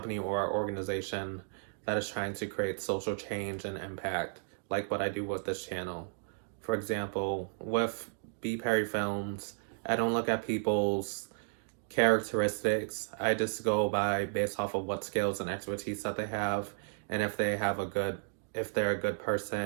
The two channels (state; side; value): silent; left; digital silence